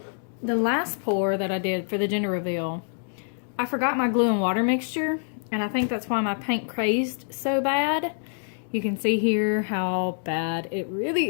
the last pour that I did for the gender reveal, I forgot my glue and water mixture, and I think that's why my paint crazed so bad. You can see here how bad it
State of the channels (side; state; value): right; silent; 61 dB below the other